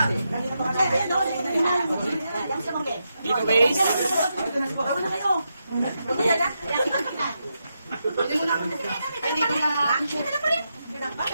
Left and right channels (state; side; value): inverted; both; correlation -0.85